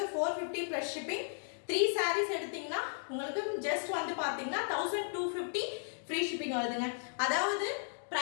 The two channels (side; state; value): right; silent; digital silence